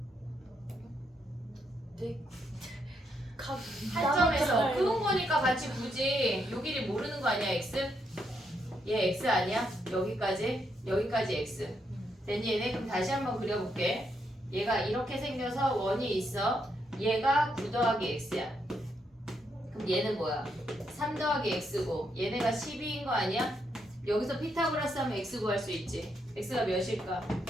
한 점에서 그은 거니까 같이 굳이 요 길이 모르는 거 아니야 x? 얘 x 아니야? 여기까지 x. 됐니 얘네? 그럼 다시 한번 그려볼게. 얘가 이렇게 생겨서 원이 있어. 얘가 9 더하기 x야. 그럼 그럼 얘는 뭐야? 3 더하기 x고 얘네가 12인 거 아니야? 여기서 피타고라스 하면 x 구할 수 있지. x가 몇일까?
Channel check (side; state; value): both; normal; correlation 0.78